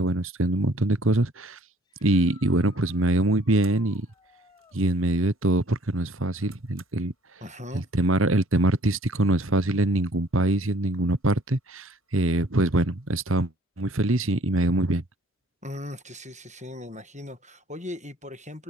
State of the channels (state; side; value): normal; both; correlation 0.58